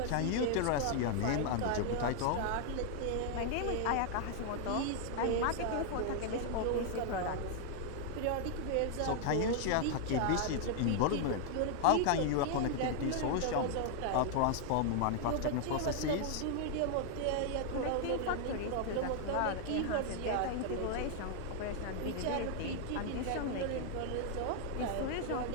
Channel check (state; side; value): different; both; correlation 0.00